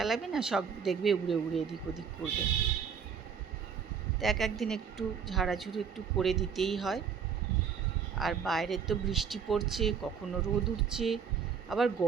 না, সব দেখবে উড়ে উড়ে এদিক ওদিক করবে। তো একদিন একটু ঝাড়াঝুড়ি একটু করে দিতেই হয়। আর বাইরে তো বৃষ্টি পড়ছে, কখনো রোদ উঠছে, আবার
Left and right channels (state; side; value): quieter; left; 6.8 dB